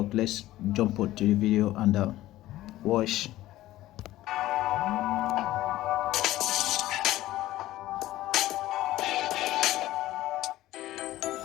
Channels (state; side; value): quieter; right; 15.5 dB